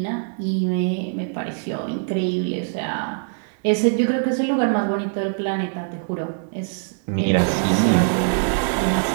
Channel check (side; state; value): left; silent; digital silence